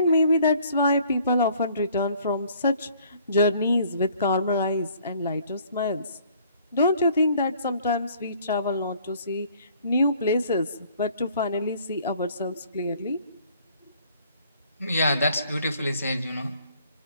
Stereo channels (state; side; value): inverted; both; correlation -0.58